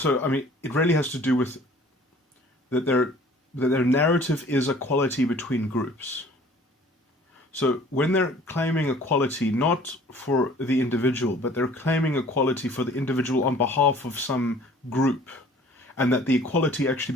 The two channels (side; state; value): both; normal; correlation 0.51